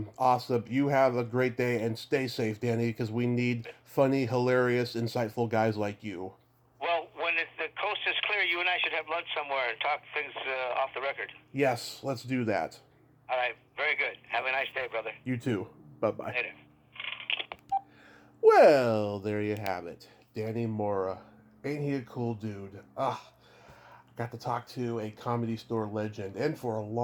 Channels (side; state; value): both; identical; correlation 1.00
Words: You have a great day and stay safe, Danny, because we need funny, hilarious, insightful guys like you. Well, when the coast is clear, you and I should have lunch somewhere and talk things off the record. Yes, let's do that. All right, very good. Have a nice day, brother. You too. Bye-bye. Later. Well, there you have it. Danny Mora. Ain't he a cool dude? Got to talk to a Comedy Store legend, and for a